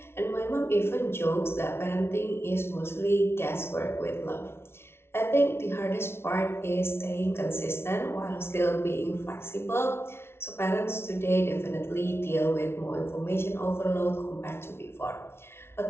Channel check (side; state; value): right; late; 0.12 ms